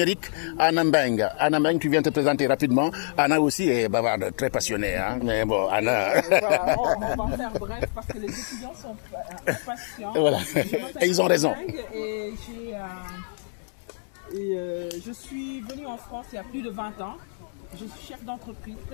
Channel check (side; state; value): right; silent; digital silence